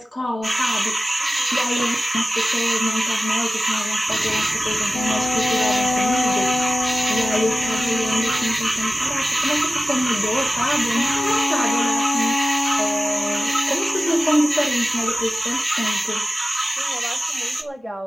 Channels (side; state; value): both; normal; correlation 0.95